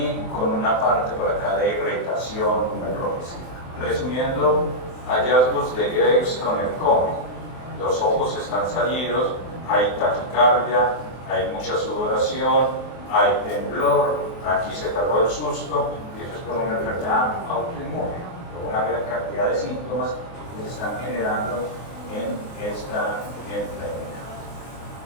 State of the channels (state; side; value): late; right; 23 ms